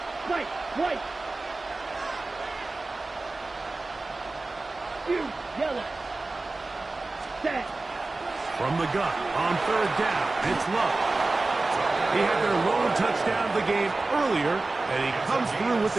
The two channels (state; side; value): quieter; left; 3.3 dB